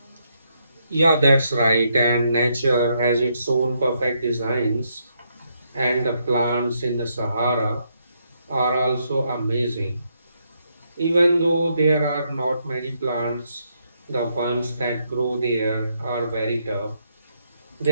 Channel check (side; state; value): both; inverted; correlation -0.77